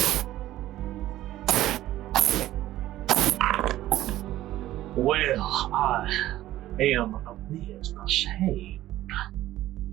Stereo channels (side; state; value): left; quieter; 14.7 dB